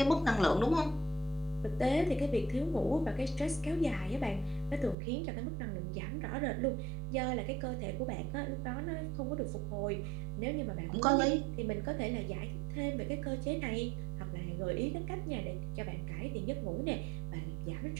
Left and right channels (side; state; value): left; drops out; at 5.0 s